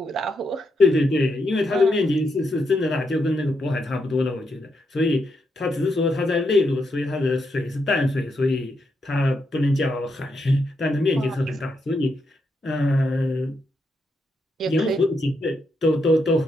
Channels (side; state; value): both; normal; correlation 0.81